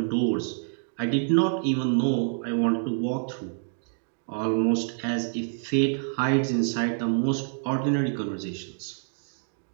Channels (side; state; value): left; silent; digital silence